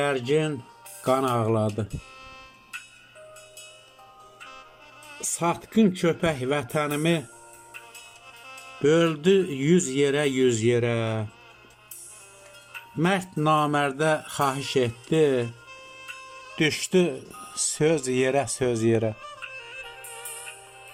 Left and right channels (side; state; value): both; identical; correlation 1.00